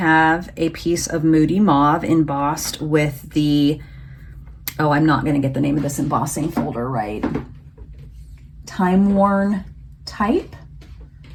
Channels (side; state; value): both; identical; correlation 1.00